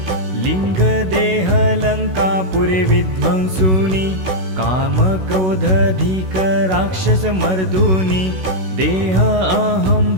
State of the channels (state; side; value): late; left; 16 ms